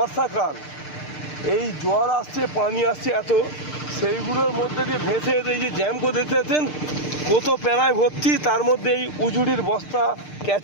এই জল আসছে, পানি আসছে এত, সেইগুলোর মধ্যে দিয়ে ভেসে এই যে জ্যাম করে দেখতে পাচ্ছেন কত প্যানায় ভর্তি, তার মধ্যে এই উজুড়ির বস্তা,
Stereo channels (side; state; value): right; late; 6.6 ms